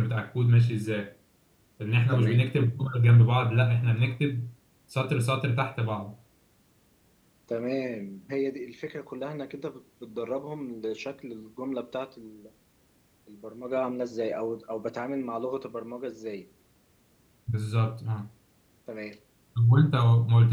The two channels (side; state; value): both; identical; correlation 1.00